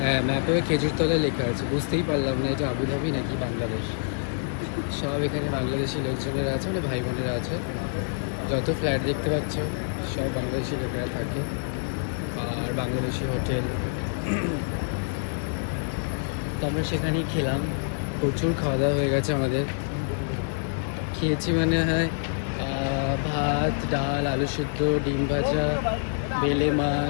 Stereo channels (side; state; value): right; silent; digital silence